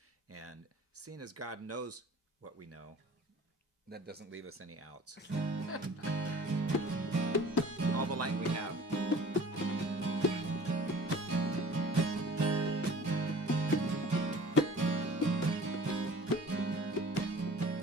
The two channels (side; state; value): both; normal; correlation 0.46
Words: And seeing as God knows what we know, that doesn't leave us any outs. All the light we have.